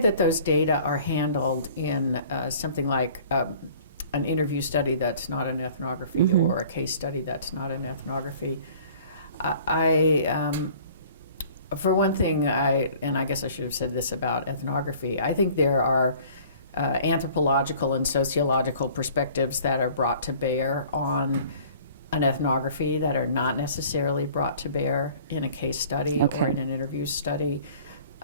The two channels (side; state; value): both; inverted; correlation -0.51